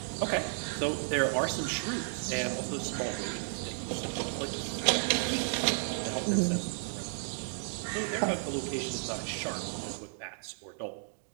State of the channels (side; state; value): left; silent; digital silence